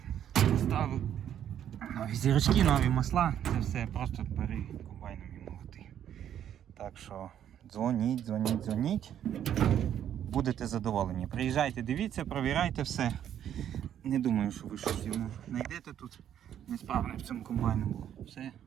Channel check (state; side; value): quieter; left; 10.1 dB